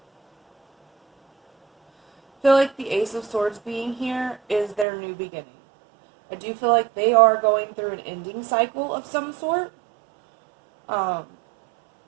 I feel like the Ace of Swords being here is their new beginning. I do feel like they are going through an ending cycle of some sort. Like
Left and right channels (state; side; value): drops out; left; at 4.9 s